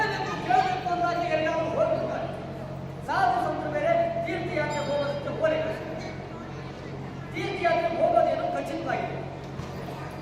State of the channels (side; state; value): both; identical; correlation 1.00